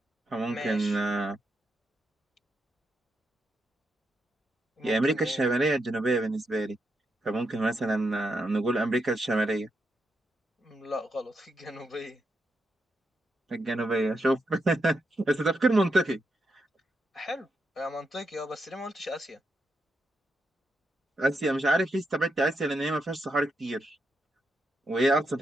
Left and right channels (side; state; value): both; normal; correlation 0.83